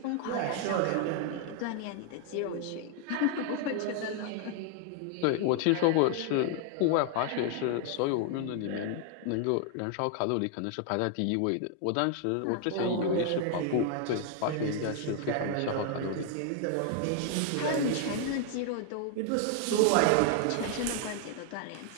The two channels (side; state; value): both; different; correlation 0.00